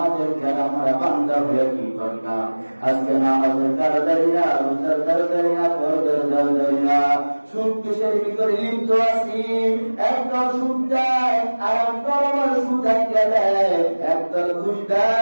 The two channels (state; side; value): inverted; both; correlation -1.00